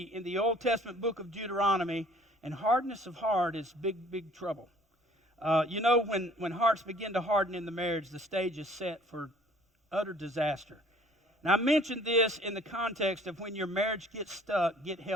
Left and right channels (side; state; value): both; normal; correlation 0.55